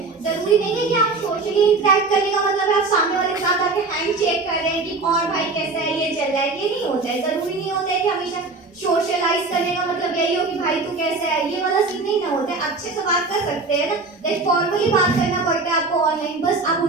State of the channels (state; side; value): quieter; left; 3.7 dB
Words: जरूरी नहीं है कि आप सोशली इंटरेक्ट करने का मतलब है आप सामने वाले के साथ आके हैंड चेक कर रहे हैं कि और भाई कैसा है, ये चल रहा है, ये नहीं होता है। जरूरी नहीं होता है कि हमेशा सोशलाइज करने का मतलब यही हो कि भाई तू कैसा है, ये वाला सीन नहीं ना होता है। अच्छे से बात कर सकते हैं ना, लाइक फॉर्मली बात करना पड़ता है आपको ऑनलाइन, बस आप